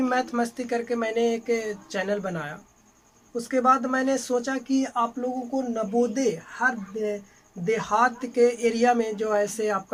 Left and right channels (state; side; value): identical; both; correlation 1.00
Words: मैथ मस्ती करके मैंने एक चैनल बनाया। उसके बाद मैंने सोचा कि आप लोगों को नवोदय हर देहात के एरिया में जो ऐसे